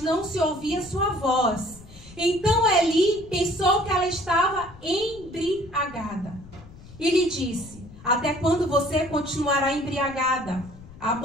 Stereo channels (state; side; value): noise; left; rumble, 19 dB below the sound